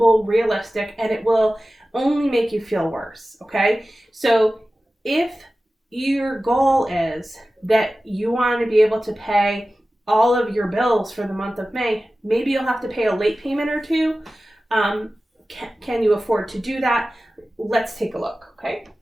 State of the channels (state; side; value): normal; both; correlation 0.96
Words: realistic, and it will only make you feel worse, okay? So if your goal is that you want to be able to pay all of your bills for the month of May, maybe you'll have to pay a late payment or two. Can you afford to do that? Let's take a look, okay?